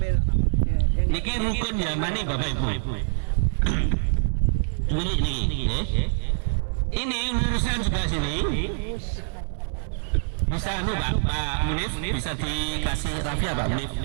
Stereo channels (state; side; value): silent; left; digital silence